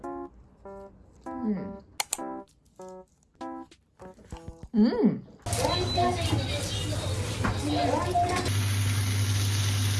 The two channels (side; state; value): both; identical; correlation 1.00